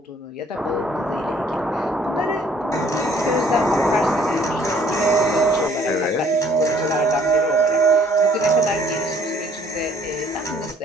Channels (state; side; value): normal; both; correlation 0.60